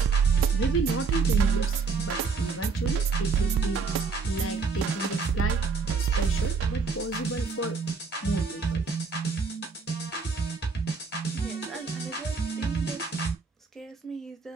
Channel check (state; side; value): quieter; left; 4.8 dB